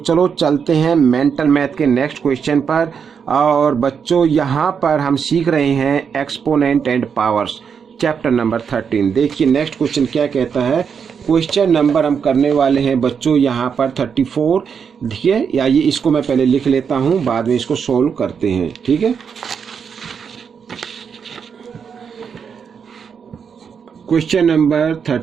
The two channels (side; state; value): left; quieter; 6.7 dB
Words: चलते हैं मेंटल मैथ के नेक्स्ट क्वेश्चन पर। और बच्चों यहां पर हम सीख रहे हैं exponent and powers, chapter number 13। देखिए नेक्स्ट क्वेश्चन क्या कहता है। क्वेश्चन नंबर हम करने वाले हैं बच्चों यहां पर 34। देखिए या ये इसको मैं पहले लिख लेता हूं, बाद में इसको सोल्व करते हैं, ठीक है। क्वेश्चन नंबर